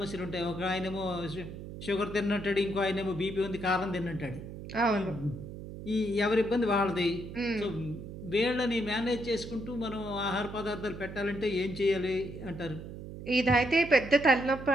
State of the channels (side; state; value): right; noise; hum, 11 dB below the sound